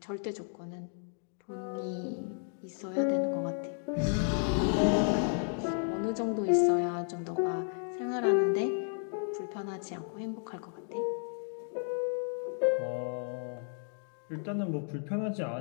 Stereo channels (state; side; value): silent; right; 56 dB below the other